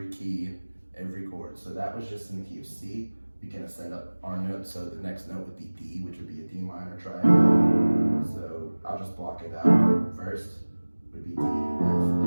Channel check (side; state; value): both; inverted; correlation -1.00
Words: key, every chord. So that was just in the key of C. We can ascend up our note, so the next note would be D, which would be a D minor triad. So I'll just block it out. First would be D, F, A,